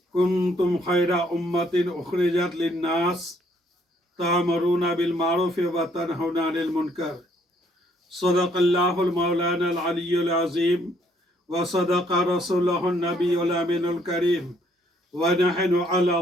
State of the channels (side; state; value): both; normal; correlation 0.67